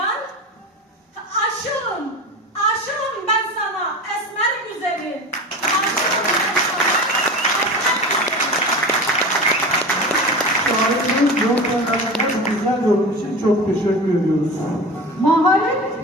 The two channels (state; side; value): normal; both; correlation 0.30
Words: Aşığım ben sana esmer güzeli. Şairimiz Yolkanlar'ın güzel yorum için çok teşekkür ediyoruz. Maharet